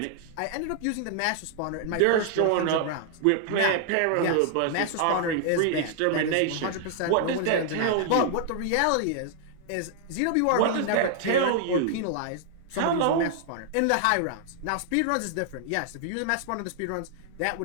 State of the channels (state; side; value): different; both; correlation 0.00